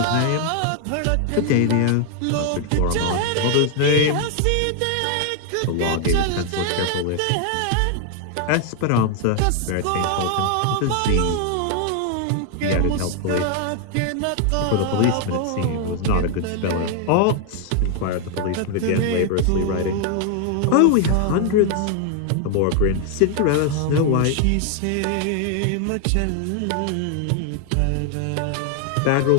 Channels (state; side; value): different; both; correlation 0.00